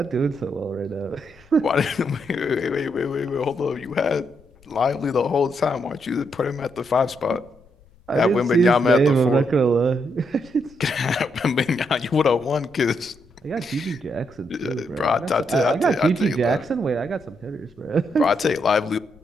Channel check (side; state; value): left; noise; rumble, 28 dB below the sound